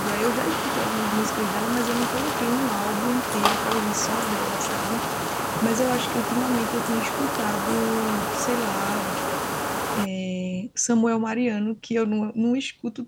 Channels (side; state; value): both; identical; correlation 1.00